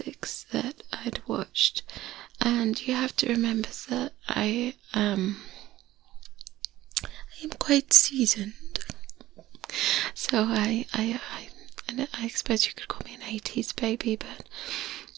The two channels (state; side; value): quieter; left; 15.4 dB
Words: that I'd watched, and you have to remember that I am quite seasoned, so I suppose you could call me an 80s baby, but